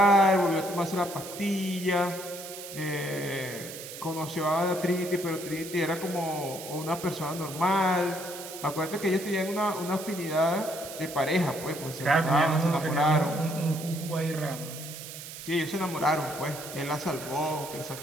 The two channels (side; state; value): right; noise; hiss, 11 dB below the sound